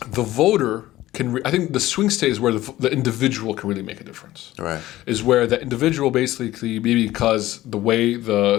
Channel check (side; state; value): right; quieter; 15.7 dB